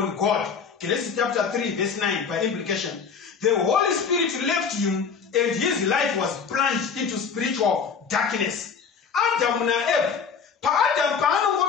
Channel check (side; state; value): right; quieter; 6.1 dB